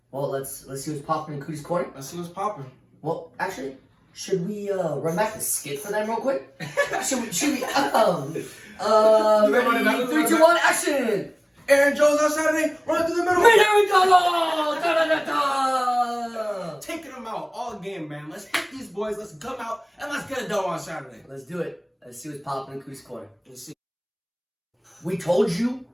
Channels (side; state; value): both; identical; correlation 1.00